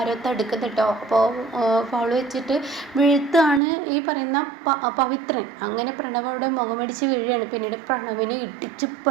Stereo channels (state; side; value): drops out; left; at 3.6 s